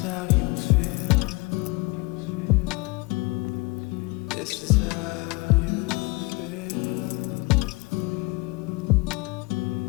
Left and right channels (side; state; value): right; quieter; 25.2 dB